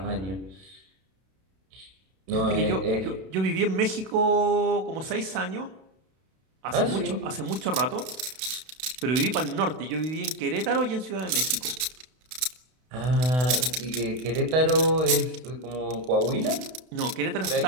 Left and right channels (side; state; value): left; late; 32 ms